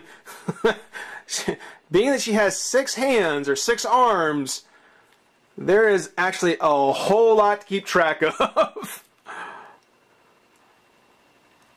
being that she has 6 hands or 6 arms, there is actually a whole lot to keep track of.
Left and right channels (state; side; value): identical; both; correlation 1.00